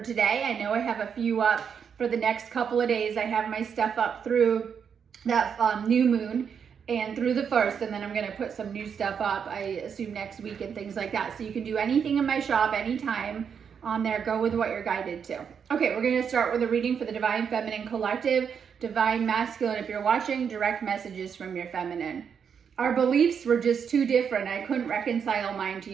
today. I know I have a few up for the next couple of days. I have my stuff up through that new moon and through the first, and then I'm going to put some new stuff up, I assume next week and things like that. So you can do anything in my shop anytime on there. Go with what you're guided to. Okay, we're going to start with a reading for the Divine Feminine Collective, Divine Masculine. If you're watching, direct messages from your feminine. our beliefs were just too different. I couldn't reconcile mine to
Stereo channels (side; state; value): left; quieter; 7.1 dB